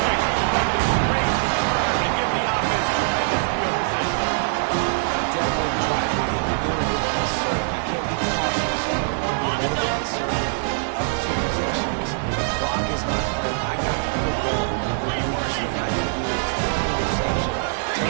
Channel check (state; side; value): silent; left; digital silence